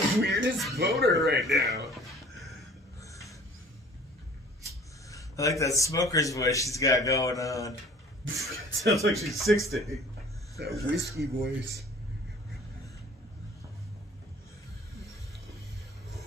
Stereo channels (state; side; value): normal; both; correlation 0.50